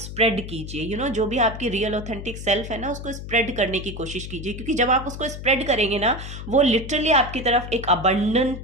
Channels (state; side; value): noise; left; hum, 9 dB below the sound